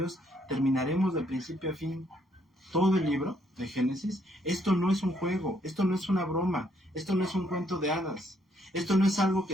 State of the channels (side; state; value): both; normal; correlation 0.70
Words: terminaremos de principio a fin todo el libro de Génesis, esto no es un juego, esto no es una broma, esto no es un cuento de hadas, esto no es algo